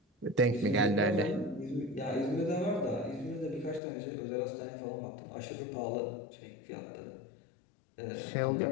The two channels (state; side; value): drops out; right; at 3.8 s